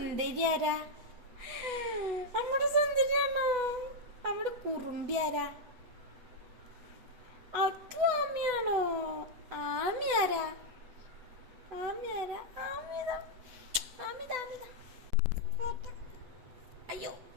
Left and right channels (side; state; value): left; late; 8.1 ms